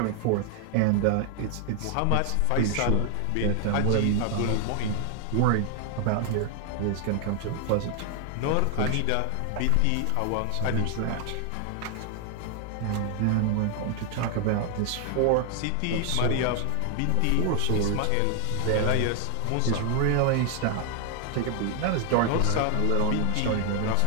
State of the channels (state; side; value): different; both; correlation 0.00